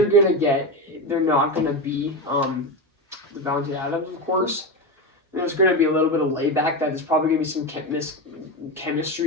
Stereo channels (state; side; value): normal; both; correlation 0.17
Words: you're gonna get, they're not gonna be the Devontae Adams, of course. There's going to be a little bit of layback. That there's probably going to be some